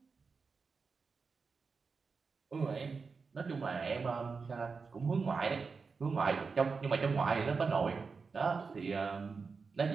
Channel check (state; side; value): quieter; left; 4.9 dB